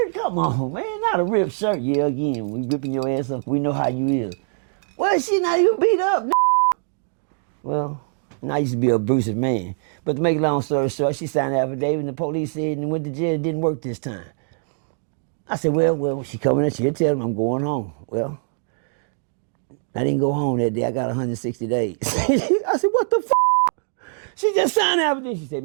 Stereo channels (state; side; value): silent; left; digital silence